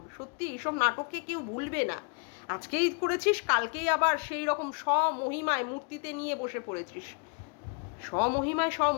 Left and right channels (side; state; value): right; quieter; 37.2 dB